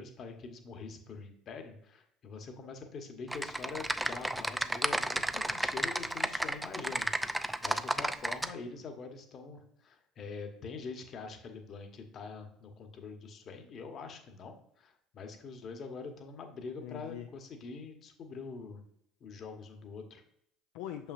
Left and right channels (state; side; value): normal; both; correlation 0.85